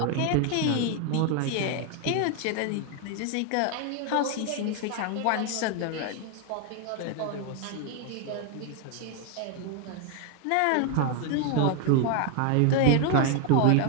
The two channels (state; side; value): different; both; correlation 0.01